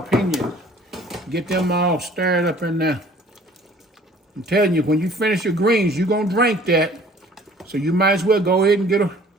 Get them all stirred up in there. I'm telling you, when you finish your greens, you're gonna drink that. So you might as well go ahead and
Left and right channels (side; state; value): both; normal; correlation 0.52